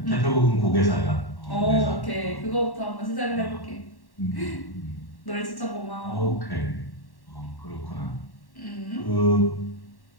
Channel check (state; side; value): late; right; 1.1 ms